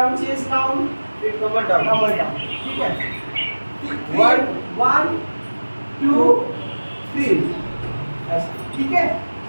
chest down, फिर कमर डाउन। कमर down, ठीक है। 1 1 2 3 ऐसा, ठीक है।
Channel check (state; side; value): inverted; both; correlation -1.00